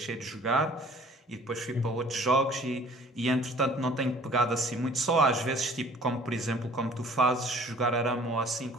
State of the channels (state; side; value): normal; both; correlation 0.51